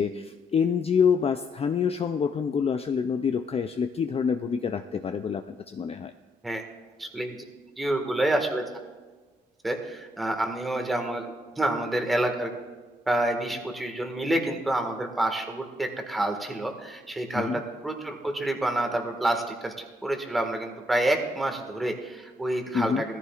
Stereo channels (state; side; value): normal; both; correlation 0.75